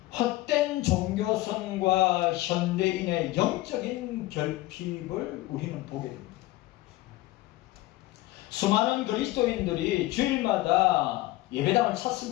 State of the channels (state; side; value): quieter; right; 17.7 dB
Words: 헛된 종교성과 현대인의 영적인 결핍을 우리는 보게 됩니다. 수많은 그리스도인들이 주일마다 예배당을